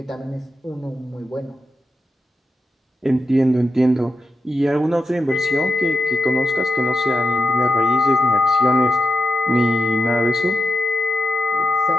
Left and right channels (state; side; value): normal; both; correlation 0.88